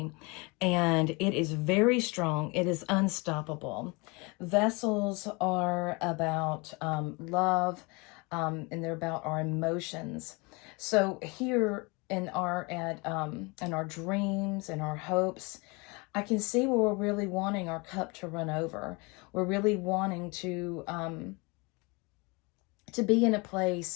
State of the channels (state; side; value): quieter; right; 27.9 dB